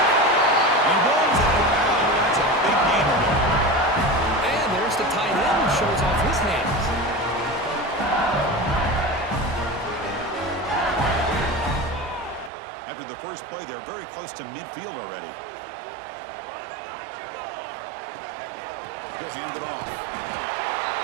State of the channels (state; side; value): drops out; left; at 12.5 s